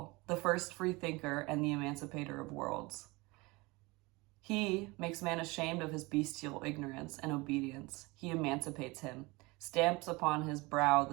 the first free thinker and the emancipator of worlds. He makes man ashamed of his bestial ignorance and obedience. He emancipates him, stamps upon his brow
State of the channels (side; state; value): left; quieter; 24.0 dB